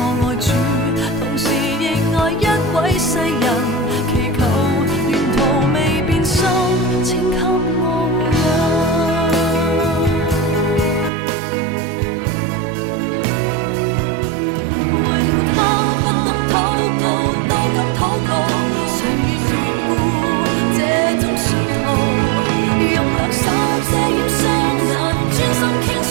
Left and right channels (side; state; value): left; drops out; at 11.1 s